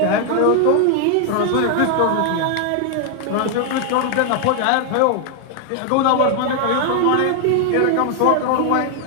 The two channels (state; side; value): different; both; correlation 0.00